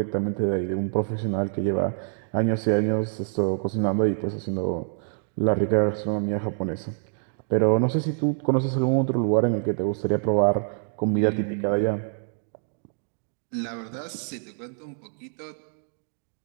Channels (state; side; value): silent; left; digital silence